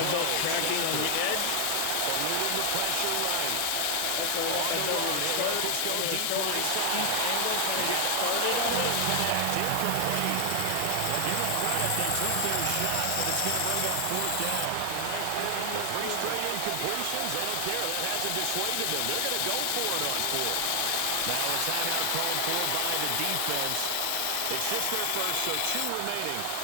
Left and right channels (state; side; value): different; both; correlation 0.00